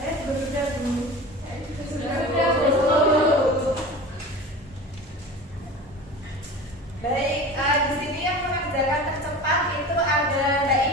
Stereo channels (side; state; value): both; normal; correlation 0.35